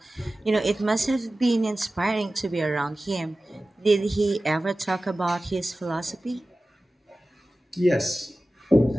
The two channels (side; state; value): both; normal; correlation 0.96